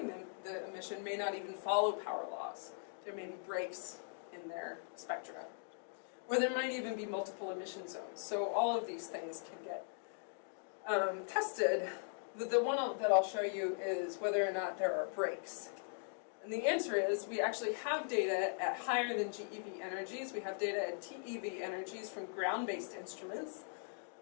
the emission may not even follow power laws. There may be breaks in their spectra. Or there might even be multiple emission zones. So all of these things can get tested. The one that I'll show you is whether or not there are breaks. And the answer is we actually have data at higher than GeV energies. We have data at TeV energies from ground-based instruments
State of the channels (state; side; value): silent; right; digital silence